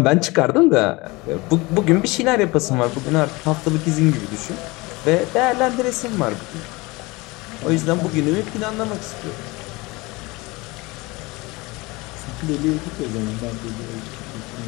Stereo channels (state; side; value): quieter; right; 23.5 dB